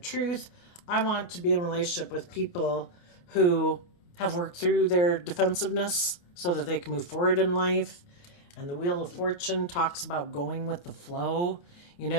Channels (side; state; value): right; late; 28 ms